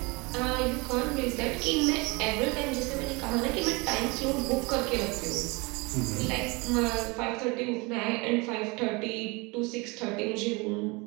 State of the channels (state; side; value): quieter; left; 26.8 dB